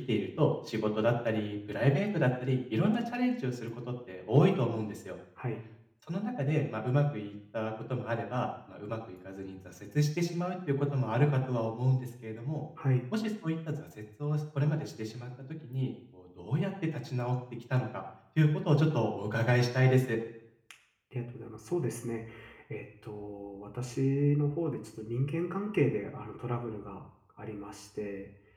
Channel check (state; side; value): identical; both; correlation 1.00